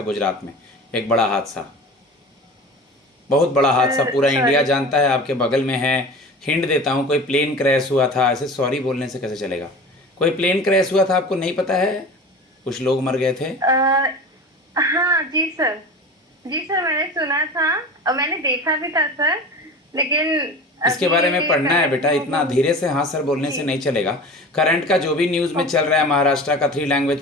गुजरात में? एक बड़ा हादसा, बहुत बड़ा हादसा, पूरा इंडिया सॉरी जानता है, आपके बगल में है। हिंट देता हूँ, कोई प्लेन क्रैश हुआ था। ऐसे सॉरी बोलने से कैसे चलेगा? कोई प्लेन क्रैश हुआ था, आपको नहीं पता है? कुछ लोग मर गए थे। हाँ जी सर, जी सर मैंने सुना था और मैंने देखा भी था सर, लेकिन इसके अभी बारे में ये पढ़ना है करंट बेटा, में इतना अभी धीरे से हाँ सर बोलने से जी नहीं चलेगा। करंट का जो भी न्यूज़ में चल ओके रहा है, महाराष्ट्र का 3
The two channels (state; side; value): normal; both; correlation 0.35